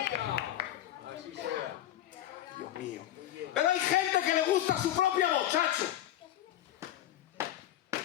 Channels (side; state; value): right; quieter; 12.9 dB